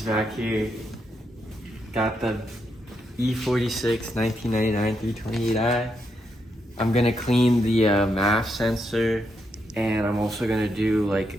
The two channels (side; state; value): both; normal; correlation 0.81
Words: back here. Got the E46 1999 328i. I'm gonna clean the MAF sensor, and I'm also gonna do like